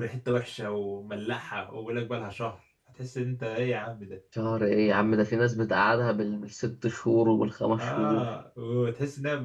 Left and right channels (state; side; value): identical; both; correlation 1.00